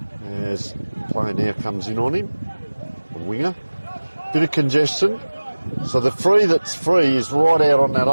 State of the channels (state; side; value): inverted; both; correlation -1.00